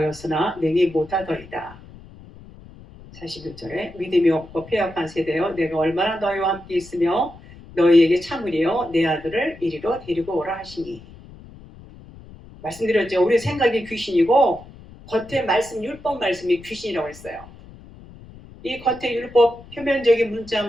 능히 못하더이다. 41절에 믿음이 없고 패역한 세대여 내가 얼마나 너희와 함께 있으며 너희에게 참으리요 내 아들을 이리로 데리고 오라 하시니. 말씀드렸죠. 우리 생각이 귀신이고 겉에 말씀 율법 말씀이 귀신이라고 했어요. 이 겉에 율법 표면적인 문자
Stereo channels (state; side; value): noise; left; rumble, 19 dB below the sound